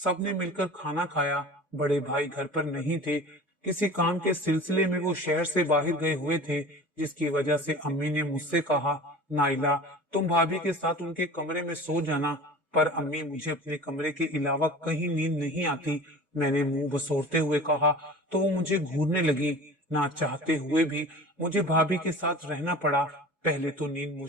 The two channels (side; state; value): both; normal; correlation 0.38